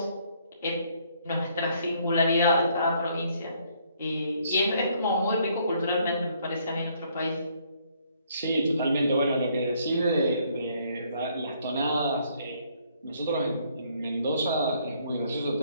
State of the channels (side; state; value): both; inverted; correlation -0.67